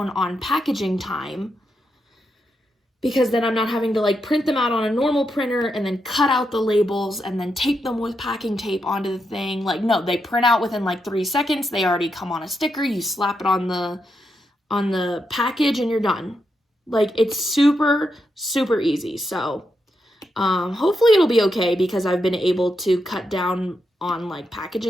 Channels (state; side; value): normal; both; correlation 0.84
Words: on packaging time, because then I'm not having to, like, print them out on a normal printer and then cut out the labels and then tape them with packing tape onto the thing. Like, no, they print out within like 3 seconds. They already come on a sticker. You slap it on the package and you're done. Like, it's super, super easy. So hopefully it'll be okay, because I've been able to cut down on, like,